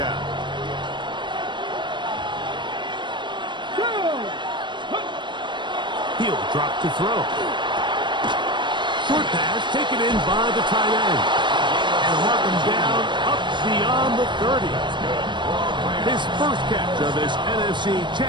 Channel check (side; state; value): left; late; 0.22 ms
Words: He'll drop to throw. Short pass taken in by the tight end. And mark him down up beyond the 30. His first catch of this NFC